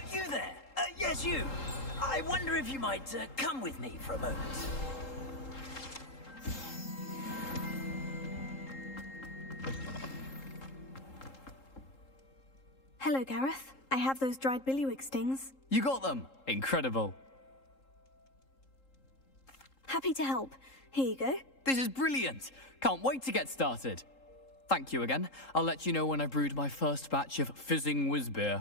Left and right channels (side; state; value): right; late; 3.8 ms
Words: You there? Yes, you. I wonder if you might come with me for a moment. Hello, Gareth. I have those dried billywig stings. You got them! Incredible. Happy to help. Here you go. This is brilliant! Can't wait to get started. Thank you again. I'll let you know when I've brewed my first batch of fizzing whiz